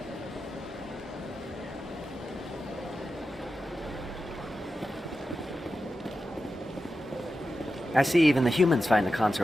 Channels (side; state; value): both; normal; correlation 0.91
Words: I see even the humans find the